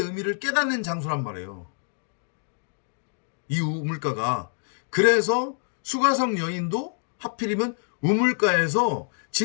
깨닫는 장소란 말이에요. 이 우물가가. 그래서 수가성 여인도 하필이면 우물가에서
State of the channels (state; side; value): silent; right; digital silence